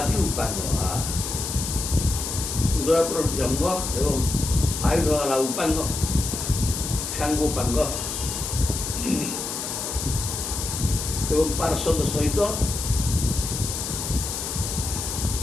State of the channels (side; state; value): left; noise; hiss, 4 dB below the sound